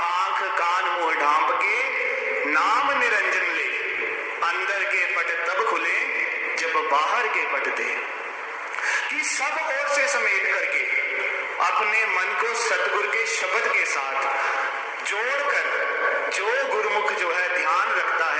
आंख कान मुंह ढांप के नाम निरंजन ले, अंदर के पट तब खुले जब बाहर के पट दे। कि सब ओर से समेट करके अपने मन को सतगुरु के शब्द के साथ जोड़कर जो गुरुमुख जो है ध्यान रखता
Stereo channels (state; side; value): identical; both; correlation 1.00